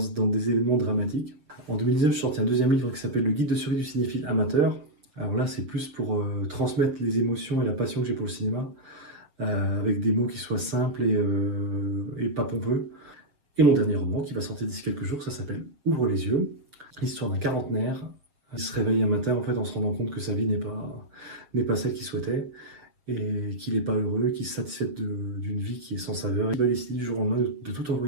des événements dramatiques. En 2019, je suis sorti un deuxième livre qui s'appelle Le guide de survie du cinéphile amateur. Alors là, c'est plus pour transmettre les émotions et la passion que j'ai pour le cinéma, avec des mots qui soient simples et pas pompeux. Et mon dernier roman, qui va sortir d'ici quelques jours, ça s'appelle Ouvre les yeux. L'histoire d'un quarantenaire qui se réveille un matin en fait, en se rendant compte que sa vie n'est pas celle qu'il souhaitait et qu'il n'est pas heureux, qu'il se satisfait d'une vie qui est sans saveur. Il va décider du jour au lendemain de tout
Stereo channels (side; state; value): left; late; 6.9 ms